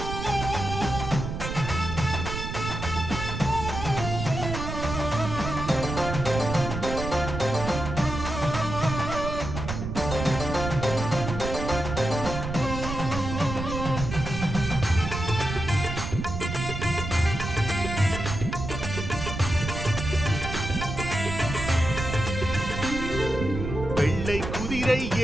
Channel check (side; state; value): right; noise; rumble, 5 dB below the sound